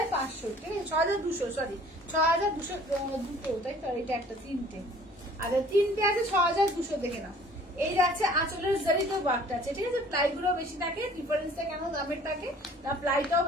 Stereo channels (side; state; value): both; normal; correlation 0.52